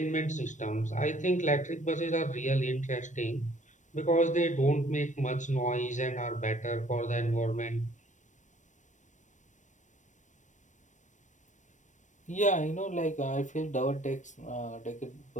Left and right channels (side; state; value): right; late; 0.35 ms